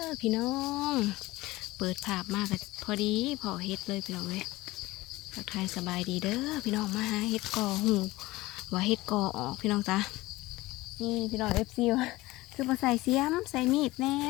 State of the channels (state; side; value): quieter; right; 19.2 dB